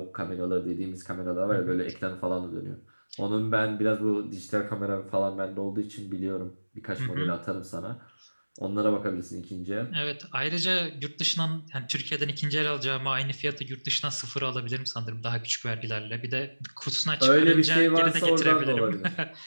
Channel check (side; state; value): both; inverted; correlation -1.00